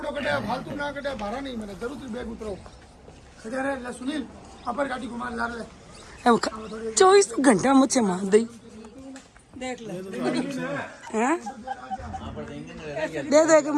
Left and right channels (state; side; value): identical; both; correlation 1.00